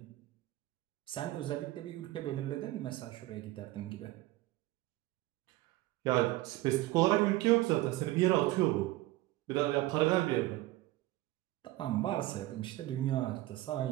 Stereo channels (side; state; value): left; quieter; 17.6 dB